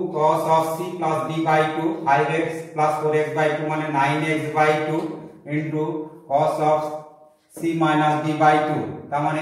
cos of c plus d by 2, 5x plus 4x by 2 মানে 9x/2 into cos of c minus d by 2 তার মানে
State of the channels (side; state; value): both; identical; correlation 1.00